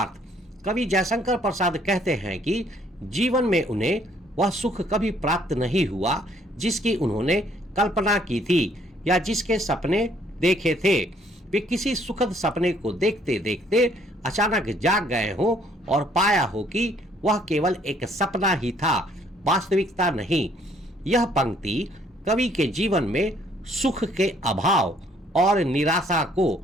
कवि जयशंकर प्रसाद कहते हैं कि जीवन में उन्हें वह सुख कभी प्राप्त नहीं हुआ जिसकी उन्होंने कल्पना की थी या जिसके सपने देखे थे। वे किसी सुखद सपने को देखते देखते अचानक जाग गए हो और पाया हो कि वह केवल एक सपना ही था, वास्तविकता नहीं। यह पंक्ति कवि के जीवन में सुख के अभाव और निराशा को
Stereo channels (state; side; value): normal; both; correlation 0.64